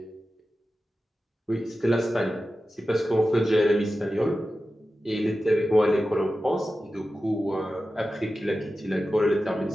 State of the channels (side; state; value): both; normal; correlation 0.93